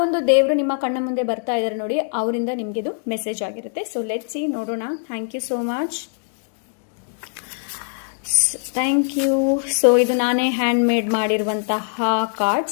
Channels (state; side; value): silent; right; digital silence